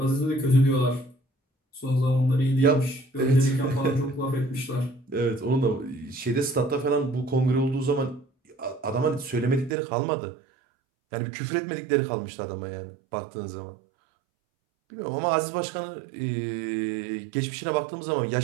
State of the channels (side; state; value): left; drops out; at 9.8 s